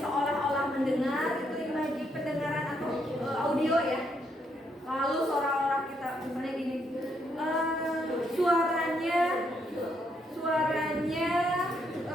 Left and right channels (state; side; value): normal; both; correlation 0.75